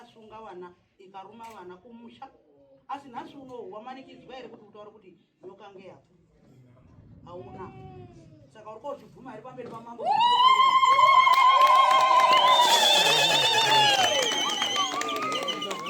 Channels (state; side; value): identical; both; correlation 1.00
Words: vana ikaruma vana kumusha. Asi nhasi unowu wamanikidzwa here kuti utaure kuti nyoka ngeyapo? Hauna. Saka uri kozvibvuma here pamberi pamambo kuti nyoka ngeyapo?